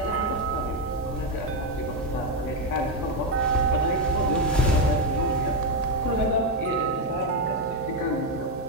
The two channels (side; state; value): both; normal; correlation 0.06